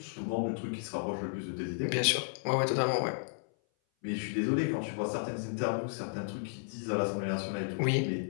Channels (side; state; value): right; silent; 56 dB below the other